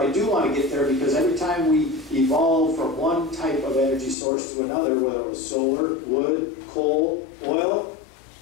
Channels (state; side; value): drops out; right; at 4.2 s